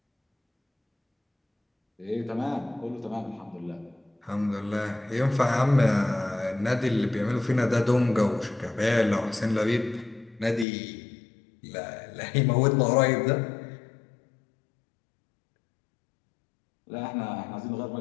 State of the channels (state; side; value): drops out; right; at 10.7 s